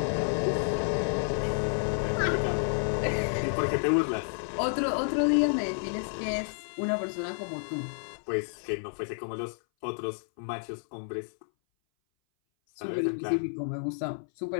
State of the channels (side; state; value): right; silent; 58 dB below the other